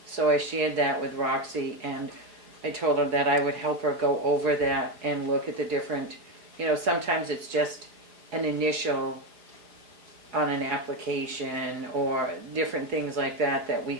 So I shared that with Roxy, and I told her that I would help her go over that and look at the different, sometimes it's just an initial on an application or different things like that that we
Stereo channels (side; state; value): left; late; 4.8 ms